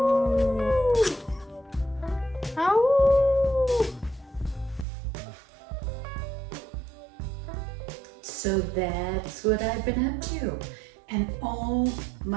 Ow. So that's what I've been up to. And oh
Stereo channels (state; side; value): drops out; left; at 4.9 s